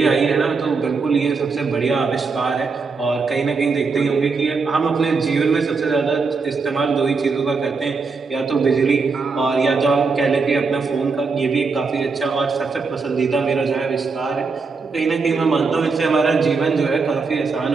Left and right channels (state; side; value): quieter; left; 4.6 dB